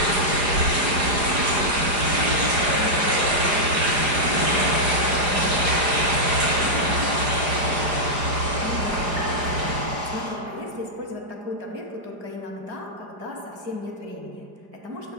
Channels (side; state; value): left; late; 4.9 ms